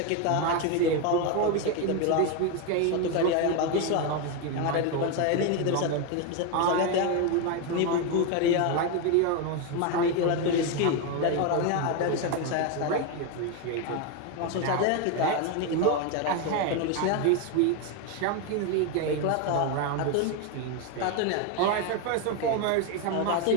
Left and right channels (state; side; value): different; both; correlation 0.02